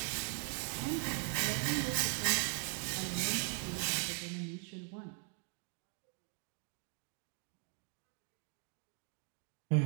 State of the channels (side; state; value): left; quieter; 37.9 dB